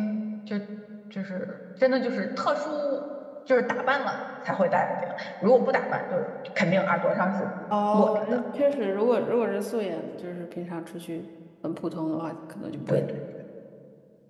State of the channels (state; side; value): identical; both; correlation 1.00